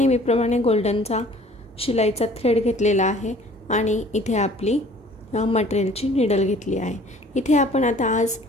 गोल्डनचा शिलाईचा थ्रेड घेतलेला आहे आणि इथे आपली मटेरियलची निडल घेतली आहे. इथे आपण आता आज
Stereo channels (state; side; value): normal; both; correlation 0.52